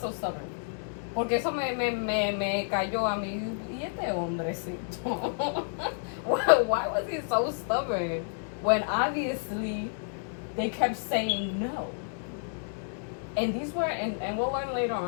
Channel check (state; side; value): silent; right; digital silence